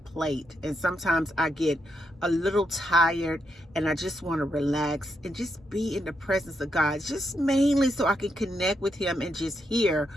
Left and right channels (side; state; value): both; normal; correlation 0.81